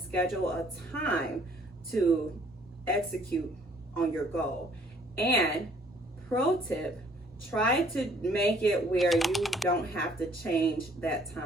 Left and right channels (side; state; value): both; normal; correlation 0.60